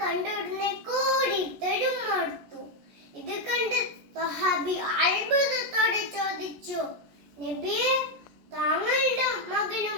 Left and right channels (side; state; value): left; late; 14 ms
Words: കണ്ടുടനെ കൂടിത്തെടുത്തു. ഇത് കണ്ട് സ്വഹാബി അത്ഭുതത്തോടെ ചോദിച്ചു, നബിയെ, താങ്കളുടെ മകനും